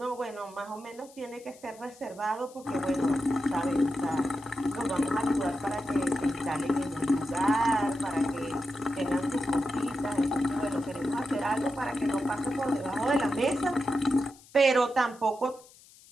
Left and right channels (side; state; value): left; noise; hiss, 24 dB below the sound